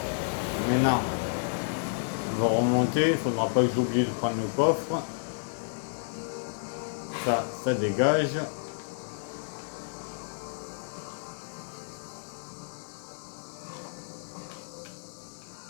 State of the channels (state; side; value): silent; right; 57 dB below the other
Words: Maintenant, on va remonter. Il ne faudra pas que j'oublie de prendre le coffre. Ça dégage.